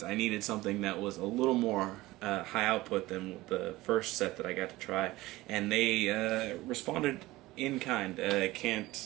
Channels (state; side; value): quieter; left; 18.7 dB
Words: I needed something that was a little more high output than the first set that I got to try, and they responded in kind. I